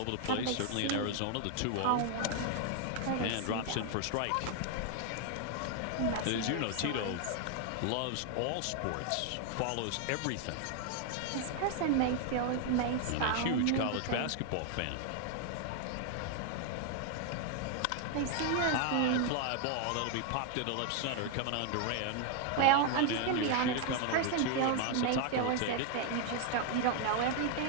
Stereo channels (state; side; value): different; both; correlation 0.00